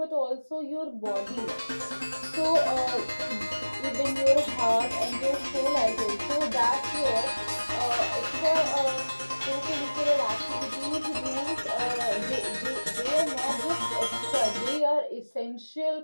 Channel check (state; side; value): inverted; both; correlation -1.00